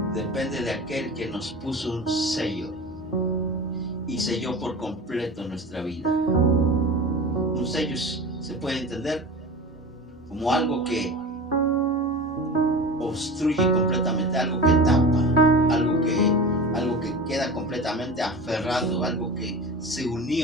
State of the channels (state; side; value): normal; both; correlation 0.32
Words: Depende de aquel que nos puso un sello y selló por completo nuestra vida. Un sello se puede entender como algo que obstruye completamente, algo que tapa, algo que queda completamente aferrado, algo que se